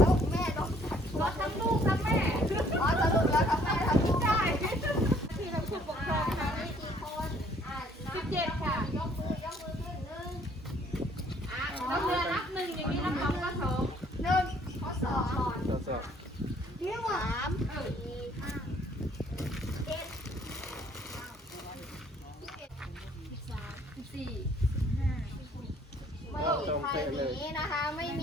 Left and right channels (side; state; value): both; normal; correlation 0.62